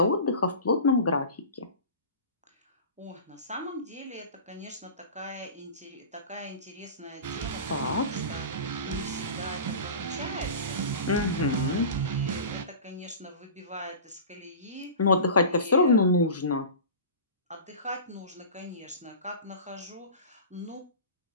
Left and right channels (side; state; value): both; inverted; correlation -0.35